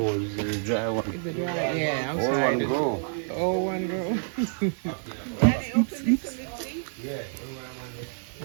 is the dry one? Is it dry? Yeah, I'm All sorry. one grow. The old one girl.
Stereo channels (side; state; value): left; silent; digital silence